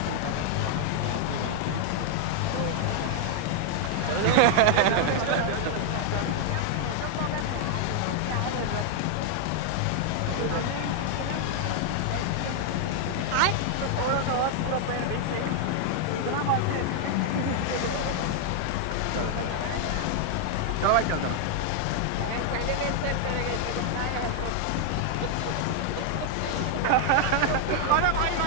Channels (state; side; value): different; both; correlation 0.00